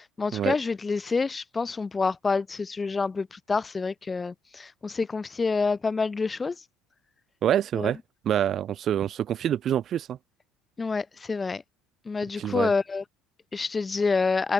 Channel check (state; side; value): normal; both; correlation 0.80